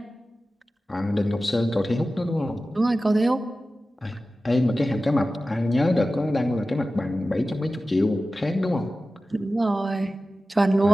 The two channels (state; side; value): normal; both; correlation 0.95